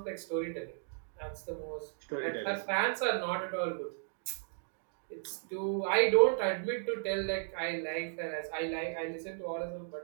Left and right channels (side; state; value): left; silent; digital silence